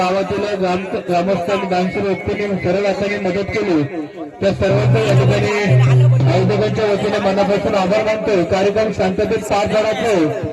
ग्रामस्थांनी दानशूर व्यक्तींनी सरळ हाताने मदत केली. त्या सर्वांचा या ठिकाणी आयोजकांच्या वतीने मनापासून आभार मानतोय. कार्यक्रम शांततेत पार पडायचे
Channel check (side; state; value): both; identical; correlation 1.00